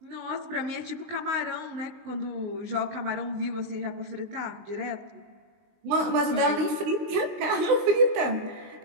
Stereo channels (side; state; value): left; late; 19 ms